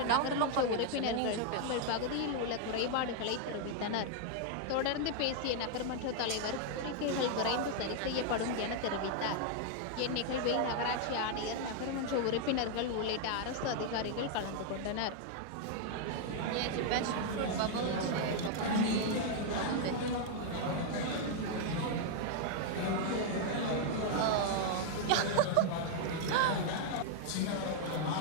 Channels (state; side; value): different; both; correlation 0.00